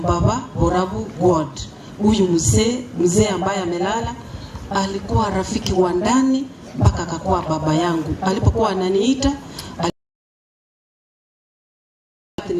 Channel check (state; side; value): identical; both; correlation 1.00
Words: Borabu God. Huyu mzee ambaye amelala alikuwa rafiki wa ndani mpaka akakuwa baba yangu. Alipokuwa ananiita